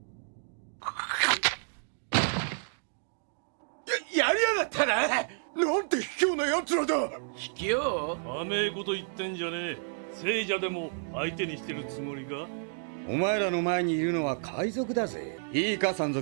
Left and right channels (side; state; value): left; silent; digital silence